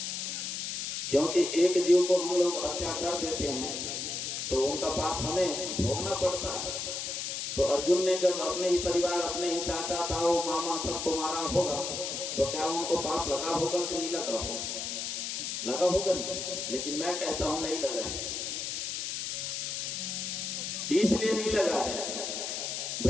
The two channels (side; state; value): left; noise; hiss, 3 dB below the sound